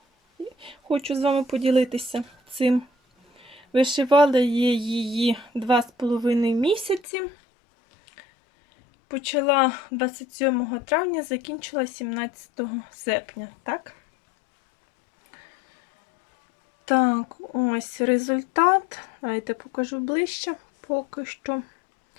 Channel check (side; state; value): right; drops out; at 7.0 s